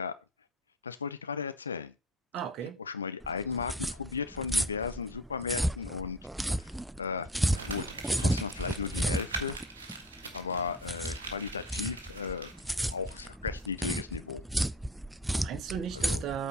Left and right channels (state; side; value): normal; both; correlation 0.35